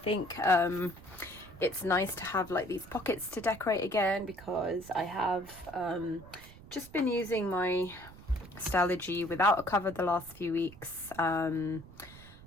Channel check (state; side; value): noise; right; rumble, 19 dB below the sound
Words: it's nice to have like these pockets to decorate again, because I have just been using my Stalogy without a cover the last few weeks.